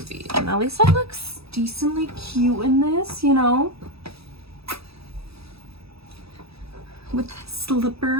and at least I look decently cute in this, you know, with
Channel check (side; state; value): left; late; 0.77 ms